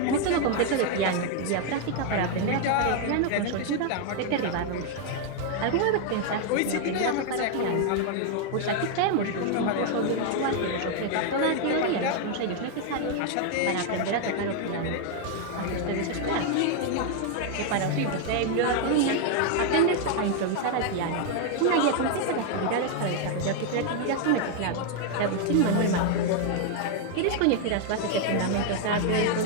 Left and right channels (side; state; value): both; different; correlation 0.00